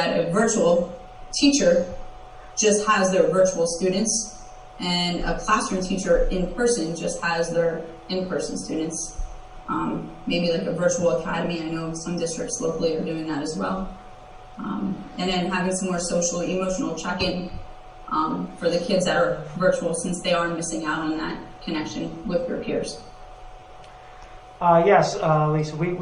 a virtual teacher just has their virtual students and a classroom teacher in person just has their in-person students. Maybe like a virtual academy. I know some districts locally are doing that as well. And then having some more social, emotional check-in for the kids that are virtual, since they are missing out on that connection with their peers. Yes, Lisa,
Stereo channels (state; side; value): identical; both; correlation 1.00